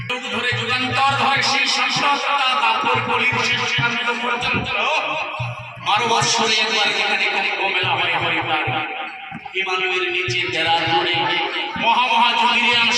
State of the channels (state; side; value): identical; both; correlation 1.00